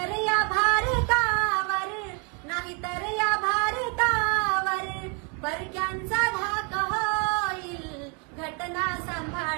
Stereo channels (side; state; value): left; quieter; 33.7 dB